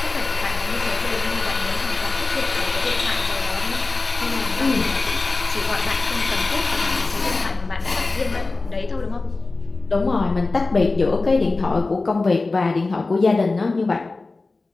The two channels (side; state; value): right; quieter; 3.5 dB